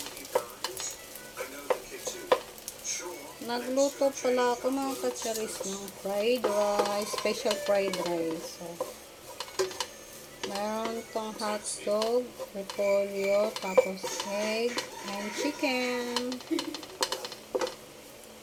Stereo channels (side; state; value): both; identical; correlation 1.00